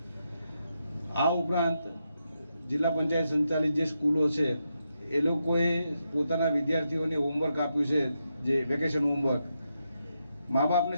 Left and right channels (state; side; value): inverted; both; correlation -0.84